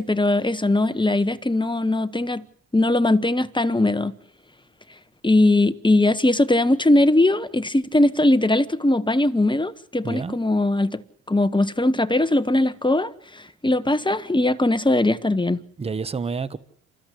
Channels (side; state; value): both; normal; correlation 0.83